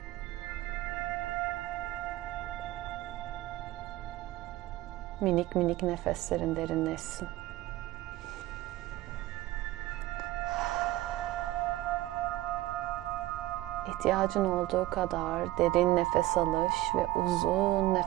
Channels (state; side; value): quieter; left; 16.8 dB